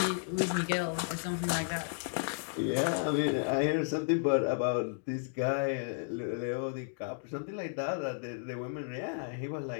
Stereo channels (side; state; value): right; silent; digital silence